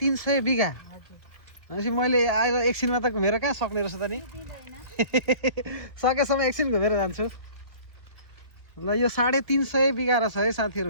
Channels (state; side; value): late; left; 2.1 ms